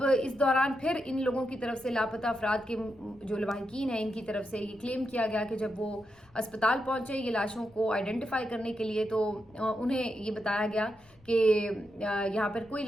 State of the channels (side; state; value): left; noise; rumble, 30 dB below the sound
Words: اس دوران پھر ان لوگوں کی طرف سے لاپتہ افراد کے جو لواحقین ہیں ان کی طرف سے یہ کلیم کیا گیا کہ جب وہ اسپتال پہنچے یہ لاشوں کو آئیڈینٹیفائی کرنے کے لیے تو انہیں یہ بتایا گیا کہ یہاں پر کوئی